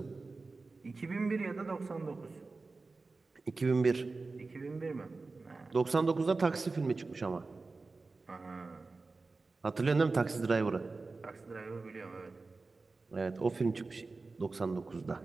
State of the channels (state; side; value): quieter; left; 3.8 dB